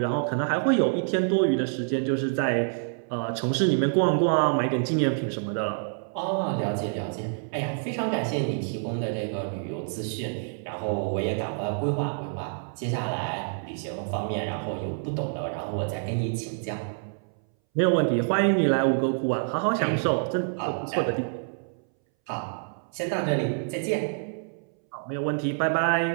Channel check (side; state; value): left; silent; 60 dB below the other